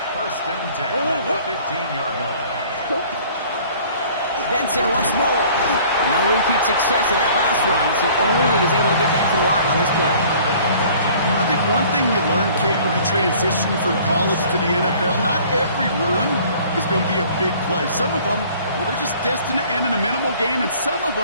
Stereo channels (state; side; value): inverted; both; correlation -0.52